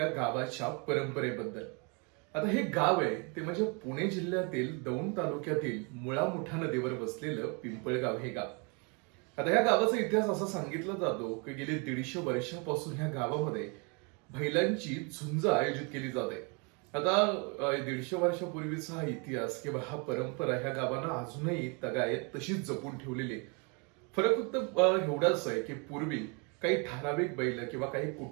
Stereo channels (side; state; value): left; quieter; 33.2 dB